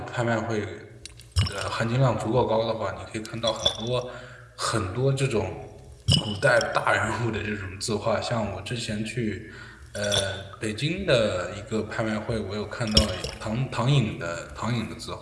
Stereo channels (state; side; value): identical; both; correlation 1.00